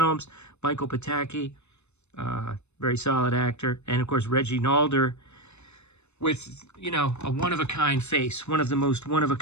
Michael Pataki, very solid actor. And, of course, Reggie Nalder with, you know, a one-of-a-kind face. One of the most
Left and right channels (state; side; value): late; right; 0.81 ms